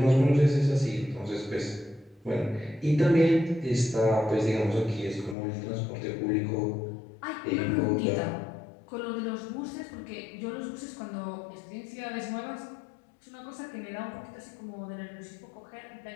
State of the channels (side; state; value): right; drops out; at 5.4 s